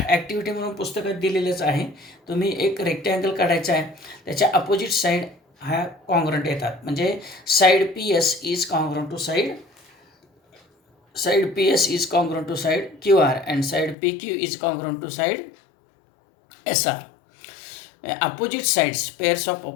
म्हणून पुस्तकात दिलेलंच आहे. तुम्ही एक रेक्टँगल काढायचा आहे, त्याच्या अपोजिट साईड ह्या कॉन्ग्रंट येतात. म्हणजे side P S is congruent to side P S is congruent to side Q R, and side P Q is congruent to side S R. Opposite sides, pairs of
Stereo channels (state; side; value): drops out; right; at 14.0 s